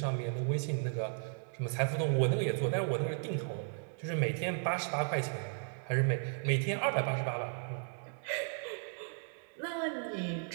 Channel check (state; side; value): silent; left; 54 dB below the other